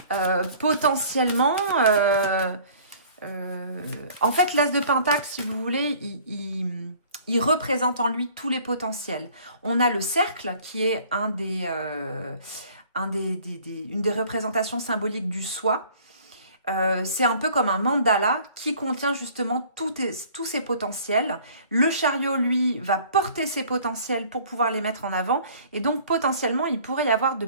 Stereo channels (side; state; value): both; inverted; correlation -0.52